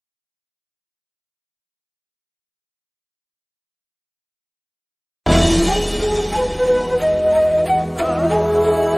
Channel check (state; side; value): identical; both; correlation 1.00